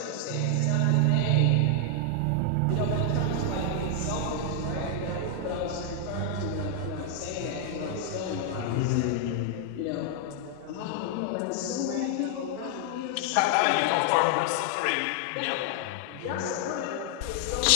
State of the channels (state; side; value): different; both; correlation 0.00